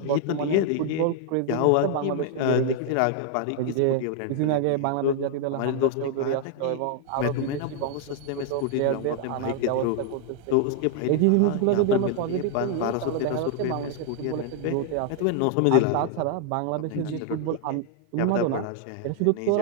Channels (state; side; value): different; both; correlation 0.00